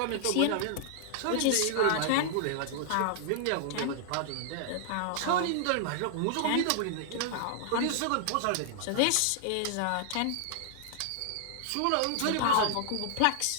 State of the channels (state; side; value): different; both; correlation -0.01